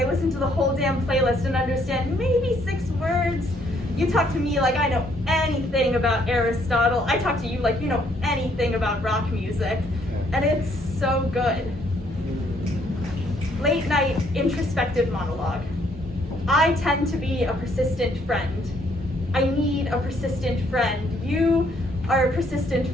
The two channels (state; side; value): normal; both; correlation 0.68